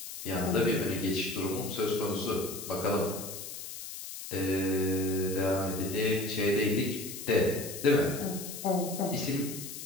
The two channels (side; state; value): left; noise; hiss, 9 dB below the sound